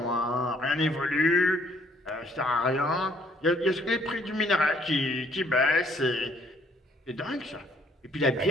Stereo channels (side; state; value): both; normal; correlation 0.64